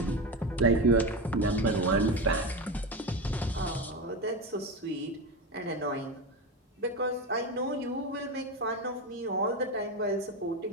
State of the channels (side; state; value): both; normal; correlation 0.19